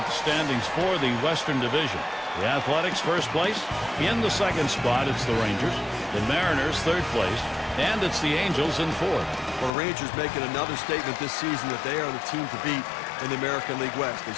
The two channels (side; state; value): right; drops out; at 9.7 s